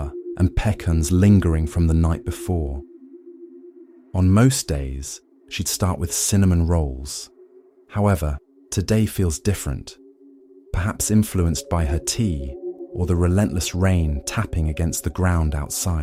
and pecans lingering from the night before. On most days, she'd start with cinnamon rolls. However, today feels different, perhaps influenced by her tea or the relentless rain tapping against the ground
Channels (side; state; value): both; identical; correlation 1.00